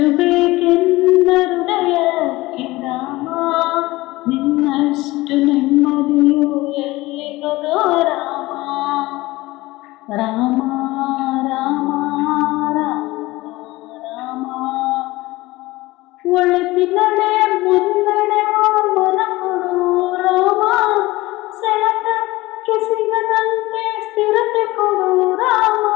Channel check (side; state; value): right; quieter; 19.6 dB